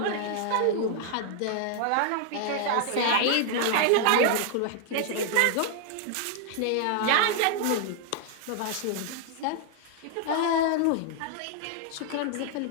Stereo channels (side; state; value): both; different; correlation 0.00